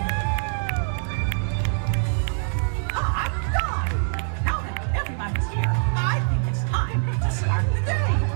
Hot dog! Now that everybody's here, I think it's time to start the day.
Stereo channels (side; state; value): left; silent; digital silence